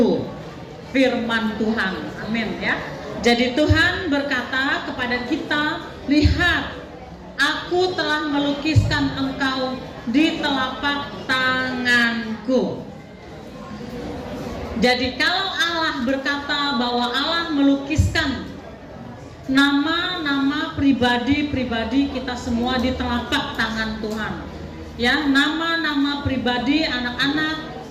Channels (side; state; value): both; identical; correlation 1.00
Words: Firman Tuhan, amin ya. Jadi Tuhan berkata kepada kita, lihat, aku telah melukiskan engkau di telapak tanganku. Jadi kalau Allah berkata bahwa Allah melukiskan nama-nama pribadi-pribadi kita semua di telapak tangan Tuhan, ya, nama-nama pribadi anak-anak